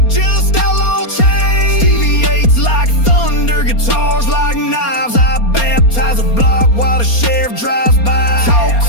just outlaw chains. DV8's like thunder, guitars like knives. I baptize a block while the sheriff drives by. Talk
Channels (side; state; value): right; late; 4.3 ms